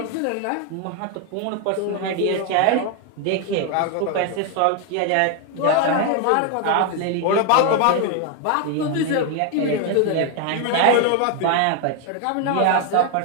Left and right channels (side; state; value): both; different; correlation 0.01